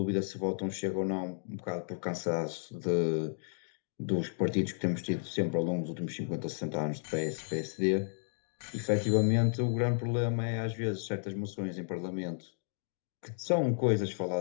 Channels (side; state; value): right; silent; digital silence